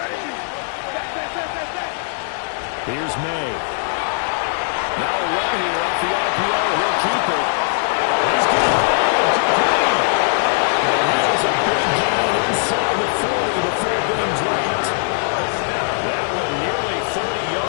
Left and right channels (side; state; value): right; silent; digital silence